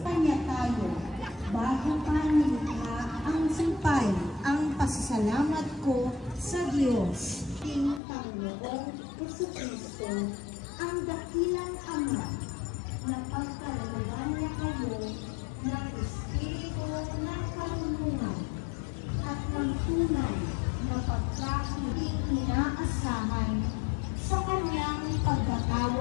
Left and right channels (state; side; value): drops out; right; at 8.0 s